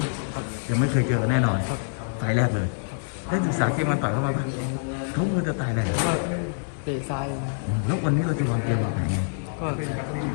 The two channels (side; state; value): right; silent; digital silence